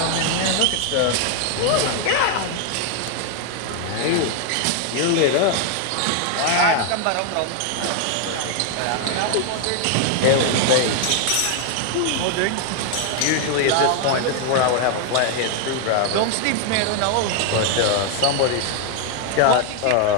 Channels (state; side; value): different; both; correlation 0.01